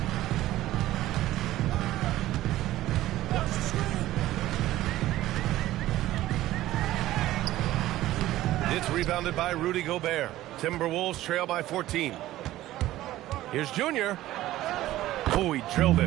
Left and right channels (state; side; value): quieter; left; 15.2 dB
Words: It's rebounded by Rudy Gobert. Timberwolves trail by 14. Here's Junior. Oh, he drilled